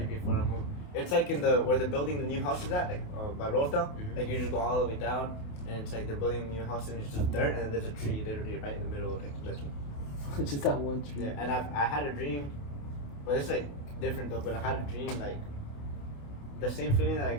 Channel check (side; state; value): right; late; 28 ms